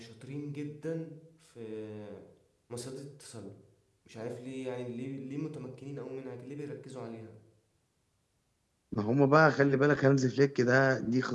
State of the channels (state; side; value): identical; both; correlation 1.00